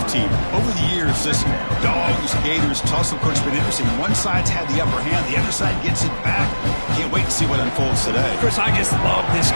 Over the years, this Dogs-Gators tussle, coach, has been interesting. One side's had the upper hand, the other side gets it back. Can't wait to see what unfolds today. Chris, I just love this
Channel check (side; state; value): both; inverted; correlation -1.00